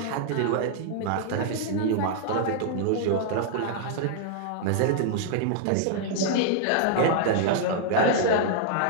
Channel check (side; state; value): both; different; correlation -0.01